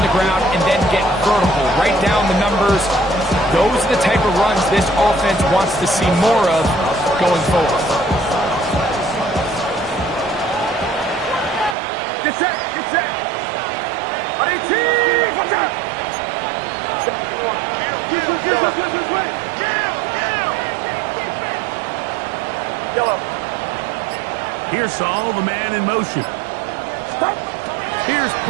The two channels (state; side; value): drops out; left; at 11.8 s